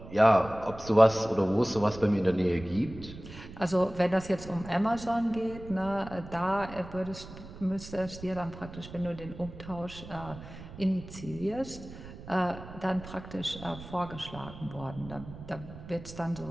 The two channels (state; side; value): noise; right; rumble, 14 dB below the sound